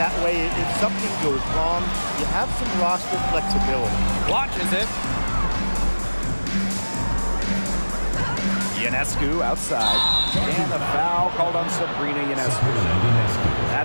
That way, if something goes wrong, you have some roster flexibility. Launches it. Ionescu outside. And a foul called on Sabrina Ionescu.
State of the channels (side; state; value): both; inverted; correlation -1.00